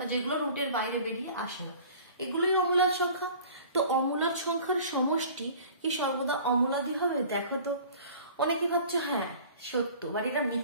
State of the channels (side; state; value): both; inverted; correlation -0.46